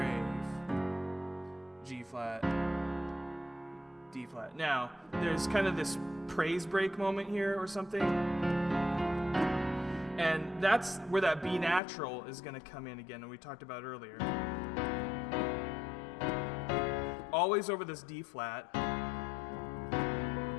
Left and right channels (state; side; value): drops out; right; at 11.8 s